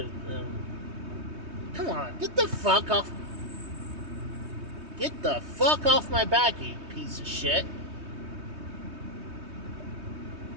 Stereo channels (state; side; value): late; left; 3.2 ms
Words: them... Come on, get the fuck off... Get the fuck off my back, you piece of shit.